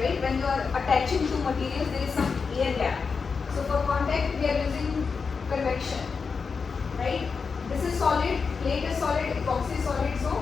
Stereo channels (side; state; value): right; quieter; 5.3 dB